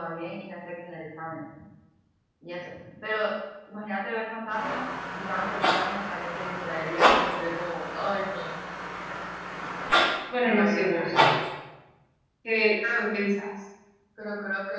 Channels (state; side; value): identical; both; correlation 1.00